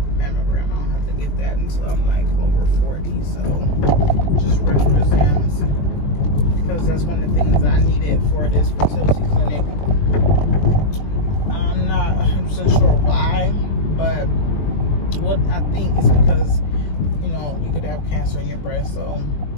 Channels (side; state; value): right; late; 20 ms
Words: mammogram. I don't have to get that until I'm like over 40, so just regular exams, because that's one of the things I needed for this fertility clinic. I'm not 100% sure why, but what I think is because, you know, you could have cancer in your breast, so